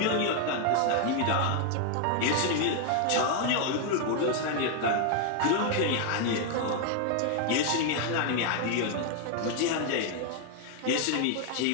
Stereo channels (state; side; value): different; both; correlation 0.00